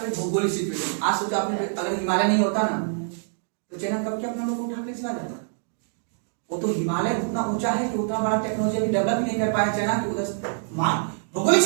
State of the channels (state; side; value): silent; left; digital silence